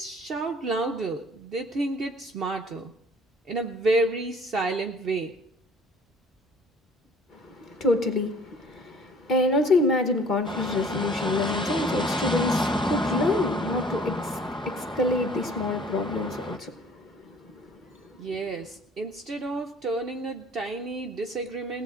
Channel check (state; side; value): normal; both; correlation 0.52